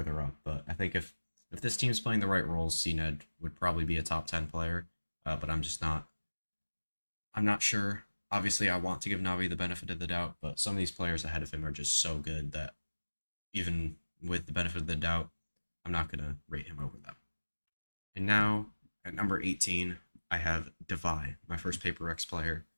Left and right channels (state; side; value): inverted; both; correlation -1.00